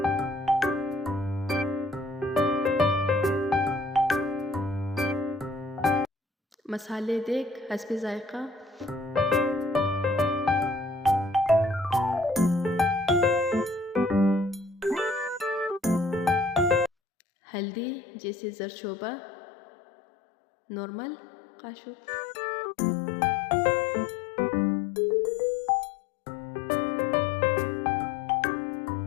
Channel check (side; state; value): right; drops out; at 16.9 s